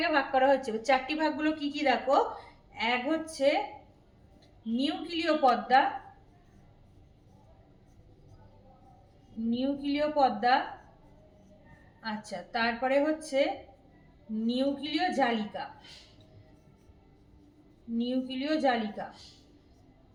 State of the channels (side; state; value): both; identical; correlation 1.00